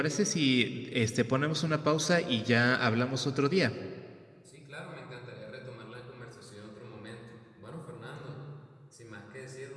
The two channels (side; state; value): both; identical; correlation 1.00